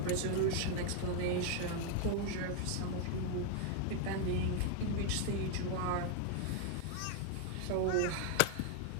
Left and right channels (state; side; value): different; both; correlation 0.01